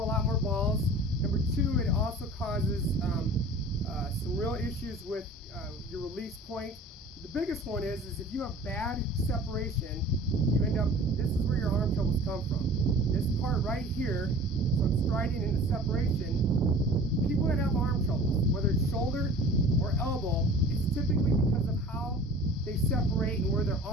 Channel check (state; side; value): normal; both; correlation 0.43